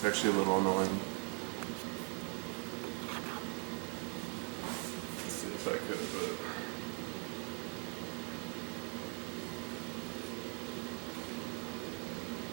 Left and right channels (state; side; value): quieter; left; 33.2 dB